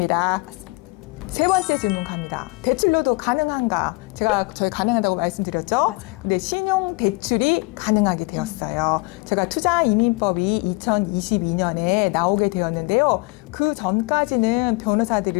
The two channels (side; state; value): right; quieter; 26.1 dB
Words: 맞습니다. 세 번째 질문 갑니다. 대출로도 가능한가? 저희 가능하다고 말씀드렸죠? 맞아요. 근데 신용 대출이 가능하게 되었어요. 제가 투자이민법이 2022년에 나오게 되었는데요. 그 전까지는